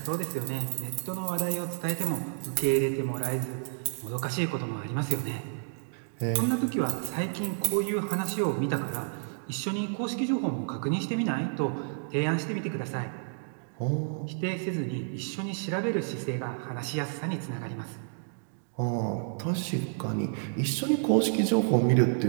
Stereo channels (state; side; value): silent; left; digital silence